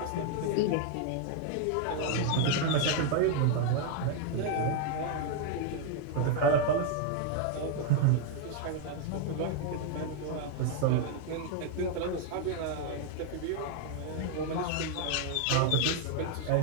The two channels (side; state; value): both; different; correlation 0.01